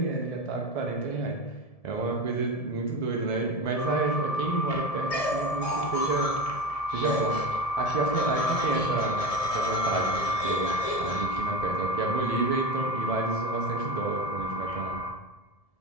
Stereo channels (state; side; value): late; right; 1.7 ms